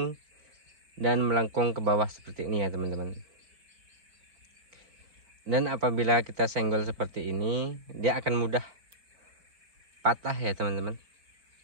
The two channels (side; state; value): left; late; 4.4 ms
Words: dan melengkung ke bawah seperti ini ya teman-teman. Dan apabila kita senggol seperti ini, dia akan mudah patah ya teman-teman,